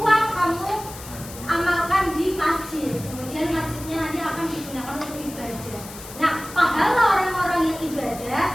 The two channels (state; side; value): noise; left; hiss, 14 dB below the sound